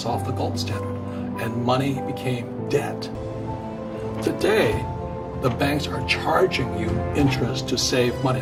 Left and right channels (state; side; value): identical; both; correlation 1.00